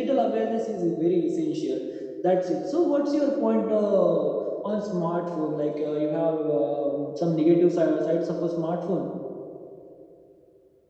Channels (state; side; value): identical; both; correlation 1.00